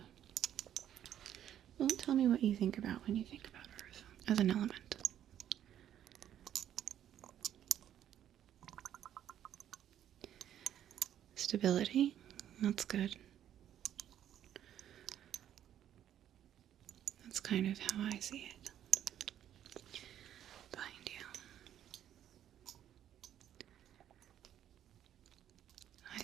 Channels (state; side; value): quieter; left; 10.7 dB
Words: Well, tell me what you think about when you think about earth as an element. Stability. That's good. That's kind of how I see it.